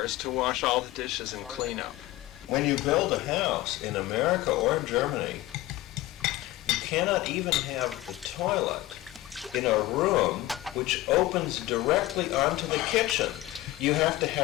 to wash all the dishes and clean up. When you build a house in America or in Germany, you cannot even have the toilet in a room which opens directly onto the kitchen. You have to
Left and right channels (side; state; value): right; quieter; 17.1 dB